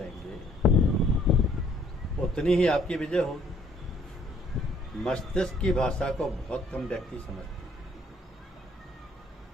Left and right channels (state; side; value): normal; both; correlation 0.63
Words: उतनी ही आपकी विजय होगी। मस्तिष्क की भाषा को बहुत कम व्यक्ति समझते हैं,